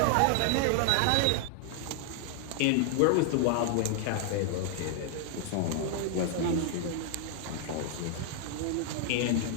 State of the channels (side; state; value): both; different; correlation 0.00